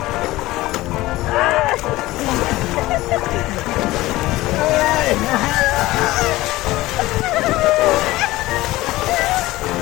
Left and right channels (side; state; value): right; quieter; 18.1 dB